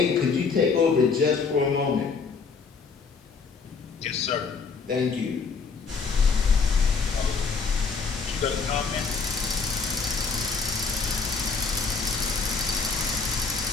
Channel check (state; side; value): quieter; right; 5.0 dB